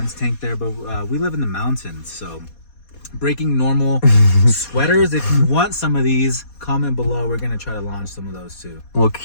tank there, but we live in the mountains, so breaking normal sweaters. If you want some of these, comment below. We're gonna try to launch some of those too. Well,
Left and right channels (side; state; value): right; late; 4.2 ms